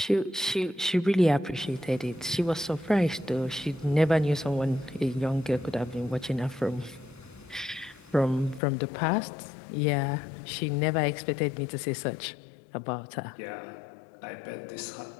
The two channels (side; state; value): right; drops out; at 8.6 s